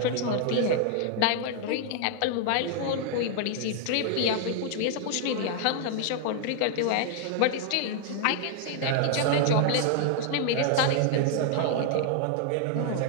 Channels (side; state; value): both; different; correlation 0.00